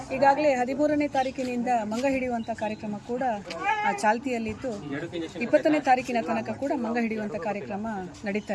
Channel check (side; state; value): both; identical; correlation 1.00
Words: ಈಗಾಗಲೇ 13ನೇ ತಾರೀಕಿನಿಂದ ಮಂಗ ಹಿಡಿಯುವಂಥ ಕಾರ್ಯಕ್ರಮ ಕೂಡ ಚಾಲ್ತಿಯಲ್ಲಿದ್ದು 20ನೇ ತಾರೀಕಿನ ತನಕ ಕೂಡ ಮಂಗ ಹಿಡಿಯುವಂಥ ಕಾರ್ಯಕ್ರಮ